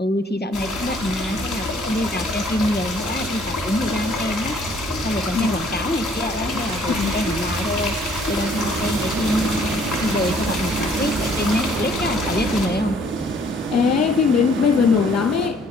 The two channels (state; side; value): normal; both; correlation 0.60